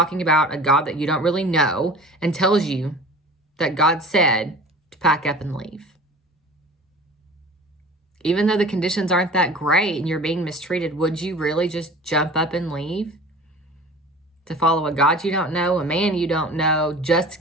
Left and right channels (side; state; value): both; normal; correlation 0.40